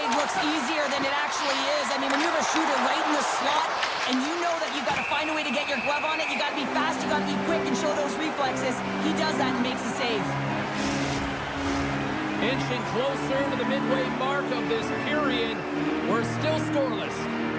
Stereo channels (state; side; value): identical; both; correlation 1.00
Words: looks easier than it actually is. I mean, when you have a shooter right in the slot and you know that you've got to find a way to get your glove on it, you got to be fast, you got to be quick and show those reflexes. He does that and makes the save. Inching closer to the midway mark of this period. We're still scoreless.